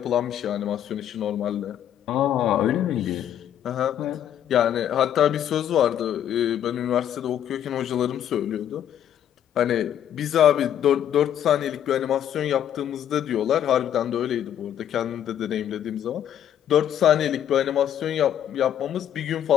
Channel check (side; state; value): right; quieter; 10.3 dB